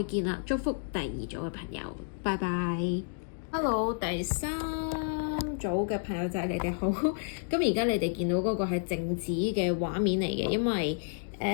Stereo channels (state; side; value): silent; right; digital silence